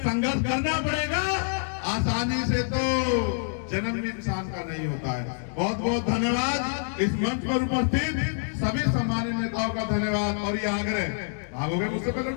संघर्ष करना पड़ेगा। आसानी से तो जन्म भी इंसान का नहीं होता है। बहुत बहुत धन्यवाद। इस मंच पर उपस्थित सभी सम्मानित नेताओं का धन्यवाद। और ये आग्रह, भागोगे मुझसे पहले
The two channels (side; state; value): right; silent; digital silence